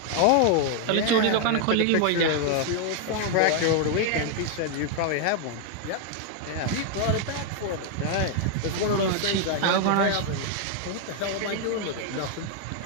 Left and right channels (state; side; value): different; both; correlation 0.00